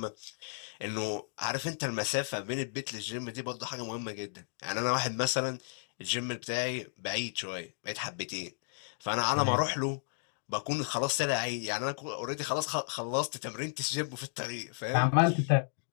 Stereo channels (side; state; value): right; silent; digital silence